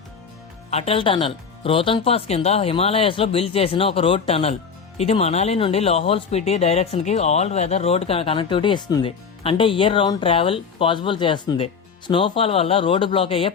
అటల్ టనల్ రోహతంగ్ పాస్ కింద హిమాలయస్ లో బిల్డ్ చేసిన ఒక రోడ్ టనల్. ఇది మనాలి నుండి లాహోల్ స్పిటి డైరెక్షన్ కి ఆల్ వెదర్ రోడ్ కనెక్టివిటీ ఇస్తుంది. అంటే ఇయర్ రౌండ్ ట్రావెల్ పాసిబుల్ చేస్తుంది. స్నోఫాల్ వల్ల రోడ్డు బ్లాక్ అయ్యే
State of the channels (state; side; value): quieter; right; 6.0 dB